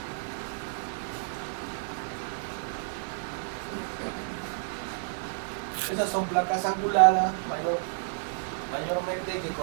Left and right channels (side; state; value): left; silent; digital silence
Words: Esas son placas anguladas mayormente que